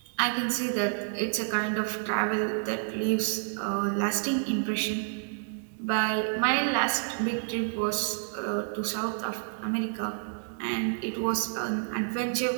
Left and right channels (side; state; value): left; silent; digital silence